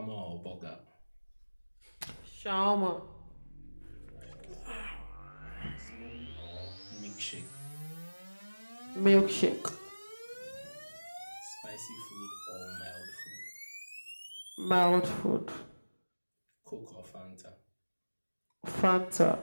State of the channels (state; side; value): inverted; both; correlation -1.00